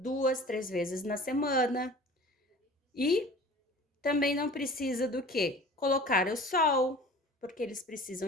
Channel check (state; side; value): normal; both; correlation 0.43